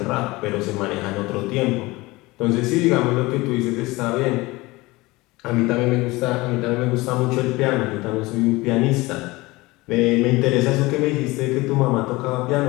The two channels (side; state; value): right; quieter; 21.5 dB